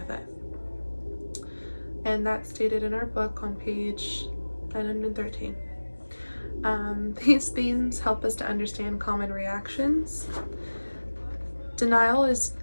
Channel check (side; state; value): both; inverted; correlation -1.00